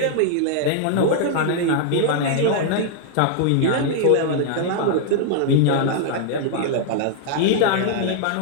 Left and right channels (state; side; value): different; both; correlation -0.01